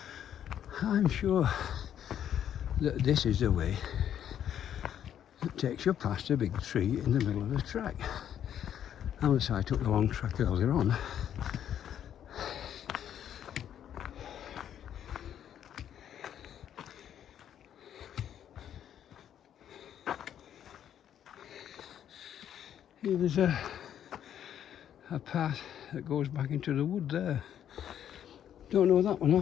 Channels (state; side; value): quieter; right; 9.9 dB